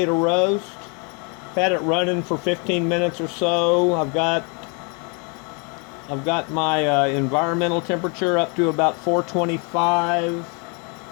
to roast. Had it running for 15 minutes or so. I've got my environmental temperature up to about 425.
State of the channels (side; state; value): right; quieter; 35.0 dB